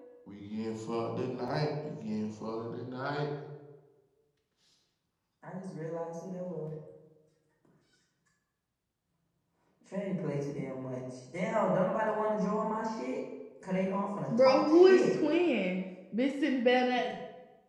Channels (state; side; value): identical; both; correlation 1.00